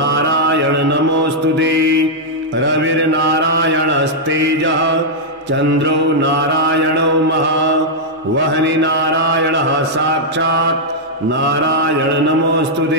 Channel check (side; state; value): both; normal; correlation -0.06